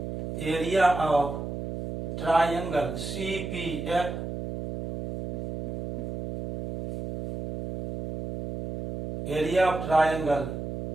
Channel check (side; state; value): right; noise; hum, 6 dB below the sound